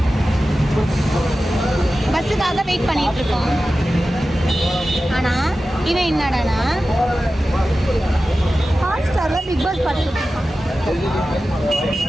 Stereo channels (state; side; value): normal; both; correlation 0.94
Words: பஸ்ஸுக்காக வெயிட் பண்ணிட்டு இருக்கோம். ஆனால் இவன் என்னடானா ஹாட்ஸ்டாரில் பிக் பாஸ் பார்த்துட்டு இருக்கான்.